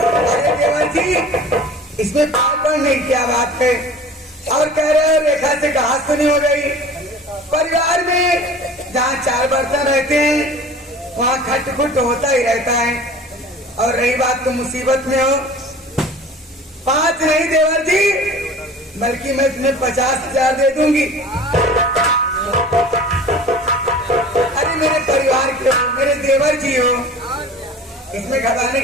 अरे देवर जी, इसमें पागल नहीं, क्या बात है? और कह रहे हो रेखा से कहा सुनी हो गई। परिवार में जहाँ 4 बर्तन रहते हैं वहाँ खटखुट होता ही रहता है। और रही बात तो मुसीबत में हो, 5 नहीं देवर जी, बल्कि मैं तुम्हें 50,000 दे दूंगी। अरे मेरे परिवार के हो, मेरे देवर जी हो, इसमें घबराने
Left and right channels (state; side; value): normal; both; correlation 0.42